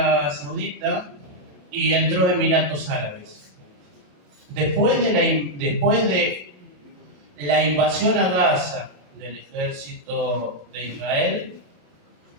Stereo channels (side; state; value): left; late; 27 ms